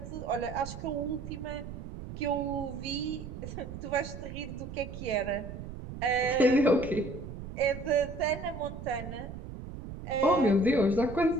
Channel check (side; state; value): right; noise; rumble, 10 dB below the sound